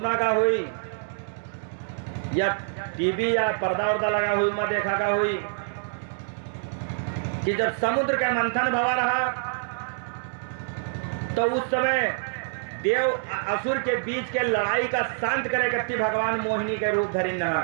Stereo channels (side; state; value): left; silent; digital silence